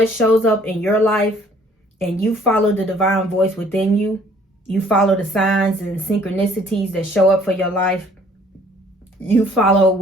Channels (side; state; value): both; normal; correlation 0.58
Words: shows up in your life and you follow the divine voice within you, you follow the signs and synchronicities that show up for your life, you follow